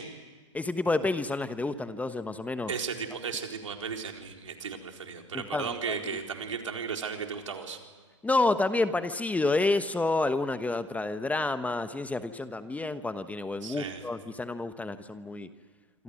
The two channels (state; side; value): normal; both; correlation 0.72